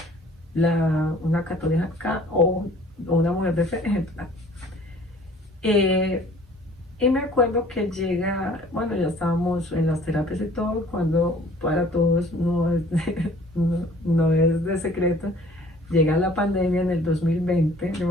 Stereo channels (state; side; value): normal; both; correlation 0.52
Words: una católica o una mujer de fe ejemplar. Y me acuerdo que llega, bueno, ya estábamos en las terapias y todo, cuando para todos no es de secreto, llega la pandemia en el 2020, yo